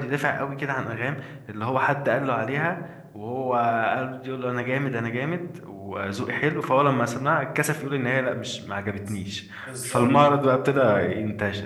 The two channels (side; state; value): both; identical; correlation 1.00